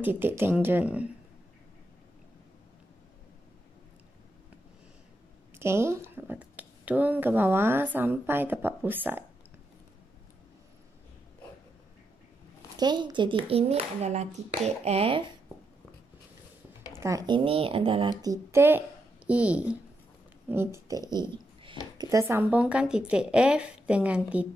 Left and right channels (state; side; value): normal; both; correlation 0.83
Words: titik tangent. Okey, turun ke bawah sampai dapat pusat. Okey, jadi ini adalah titik F dan ini adalah titik E. Ini titik E. Kita sambungkan titik F dengan